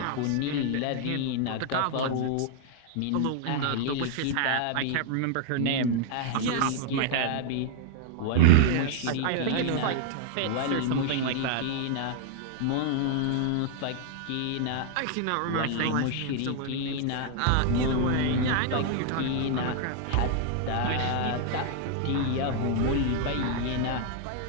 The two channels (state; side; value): different; both; correlation 0.00